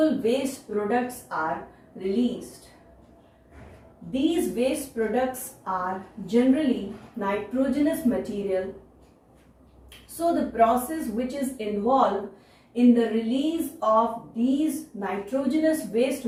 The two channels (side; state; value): both; identical; correlation 1.00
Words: waste products are released. These waste products are generally nitrogenous material. So the process which is involved in the release of these nitrogenous waste